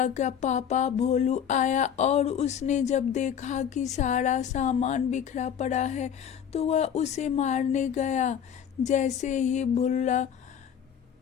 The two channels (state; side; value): quieter; right; 8.5 dB